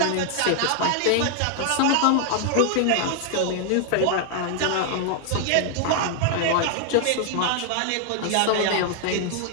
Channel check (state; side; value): different; both; correlation 0.00